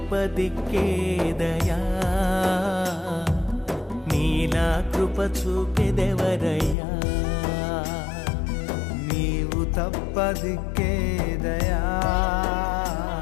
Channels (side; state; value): right; drops out; at 6.8 s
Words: దిక్కేదయా, నీలా కృప చూపెదెవరయ్యా. నీవు తప్ప దిక్కేదయా,